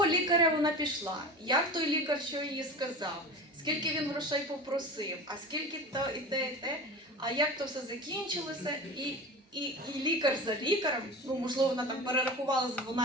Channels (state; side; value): normal; both; correlation 0.32